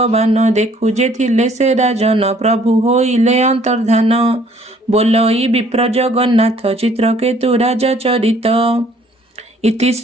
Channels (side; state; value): both; normal; correlation 0.60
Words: देखु जे थिले से राजन प्रभु होइले अंतर्धान बोलई विप्र जगन्नाथ चित्रकेतु राजा चरित। इति